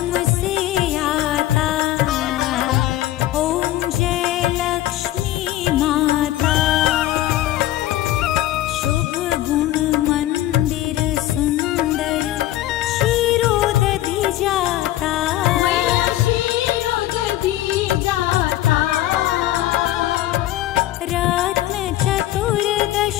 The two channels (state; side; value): quieter; right; 14.7 dB